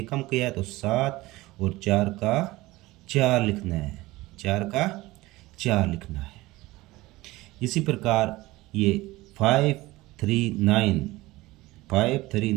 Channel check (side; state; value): left; quieter; 19.5 dB